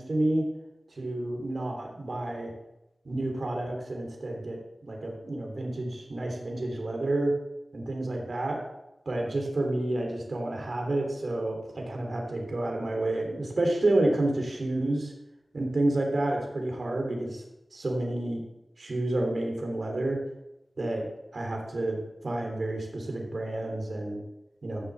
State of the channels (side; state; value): both; normal; correlation 0.96